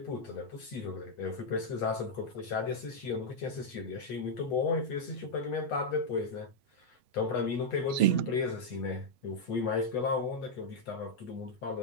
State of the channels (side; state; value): right; late; 8.0 ms